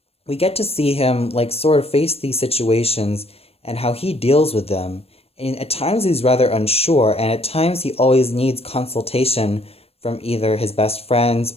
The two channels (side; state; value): right; late; 0.29 ms